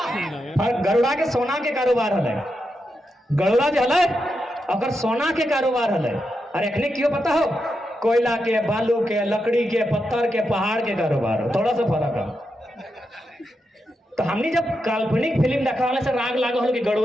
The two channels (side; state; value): both; normal; correlation 0.86